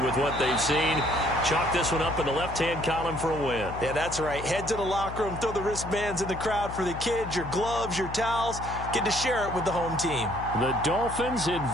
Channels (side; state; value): left; noise; hum, 10 dB below the sound